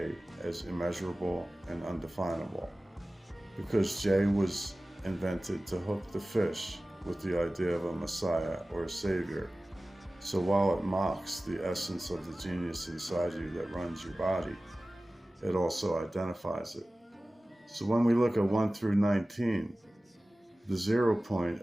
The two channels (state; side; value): normal; both; correlation 0.97